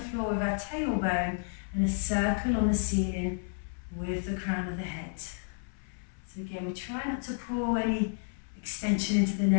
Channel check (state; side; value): silent; right; 57 dB below the other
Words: with our tailbone and a circle on the ceiling with the crown of the head. So again, we try not to pull any extension into the